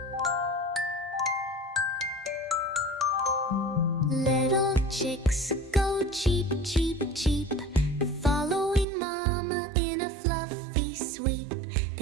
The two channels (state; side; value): drops out; left; at 8.8 s